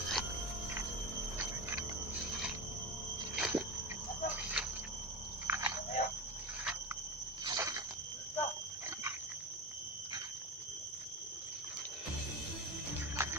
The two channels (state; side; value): normal; both; correlation 0.24